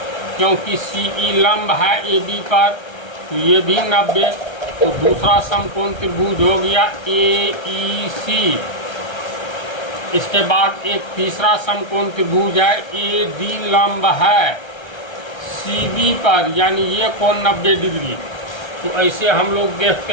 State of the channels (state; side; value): late; right; 1.3 ms